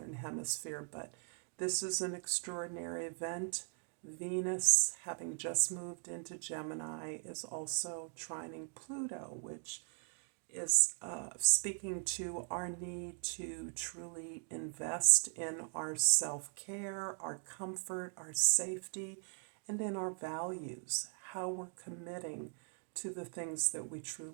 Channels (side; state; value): left; silent; 51 dB below the other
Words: hemisphere, but this is an extraordinary event. Venus, having just moved into Gemini, is also trining Pluto, which is speaking to our need to truly invest in our self-care, our comfort, our safety, and in our values, how we're committing to the things that we